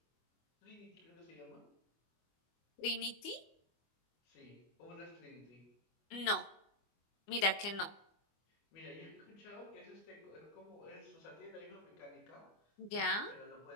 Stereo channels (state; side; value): late; right; 25 ms